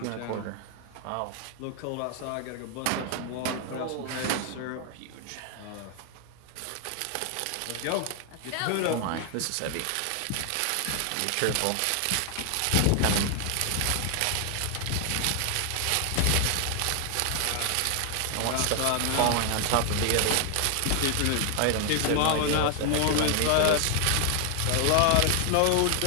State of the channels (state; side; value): different; both; correlation 0.00